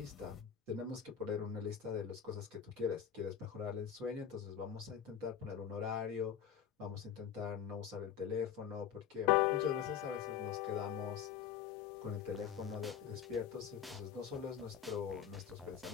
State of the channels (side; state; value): right; quieter; 8.5 dB